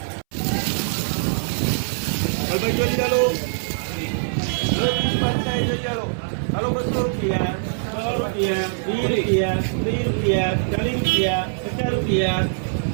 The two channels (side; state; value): left; silent; 64 dB below the other